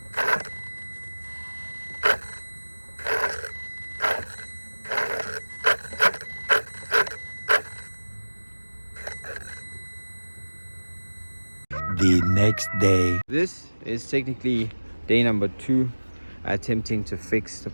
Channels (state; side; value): inverted; both; correlation -1.00